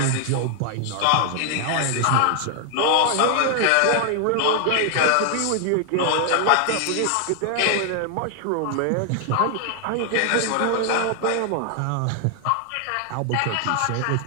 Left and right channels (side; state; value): both; different; correlation 0.00